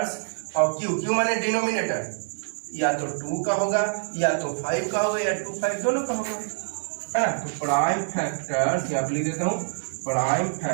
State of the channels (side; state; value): left; silent; digital silence